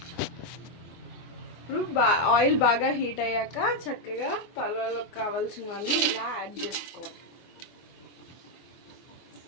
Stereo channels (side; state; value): right; late; 24 ms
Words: ఇప్పుడు ఆయిల్ బాగా హీట్ అయ్యాక చక్కగా పలావులోకి కావాల్సినవన్నీ ఇలా యాడ్ చేసుకోవాలి.